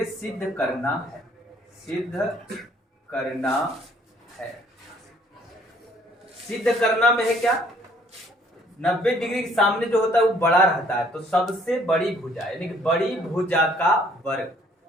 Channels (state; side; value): normal; both; correlation 0.61